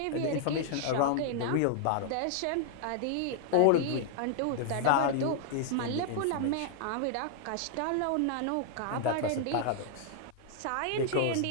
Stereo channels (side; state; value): both; different; correlation -0.01